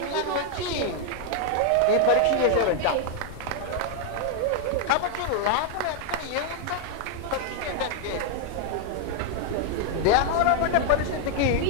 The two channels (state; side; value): different; both; correlation 0.00